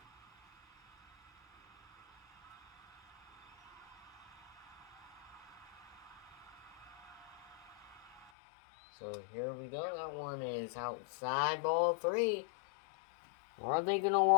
So here we go. That one is outside, ball 3. Are they going to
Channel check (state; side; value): drops out; right; at 8.3 s